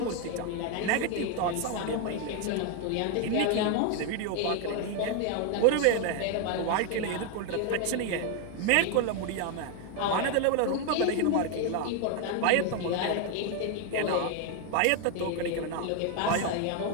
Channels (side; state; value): both; different; correlation 0.01